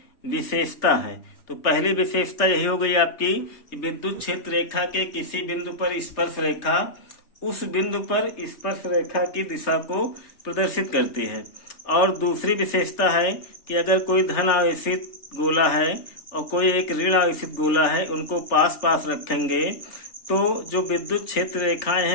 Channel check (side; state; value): right; late; 3.3 ms